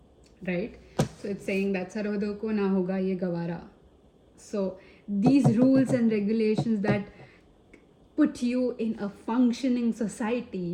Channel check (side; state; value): both; identical; correlation 1.00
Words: right? So it's saying that sarhadon ko na hoga ye gawara. So these rules and regulations that put you in a functioning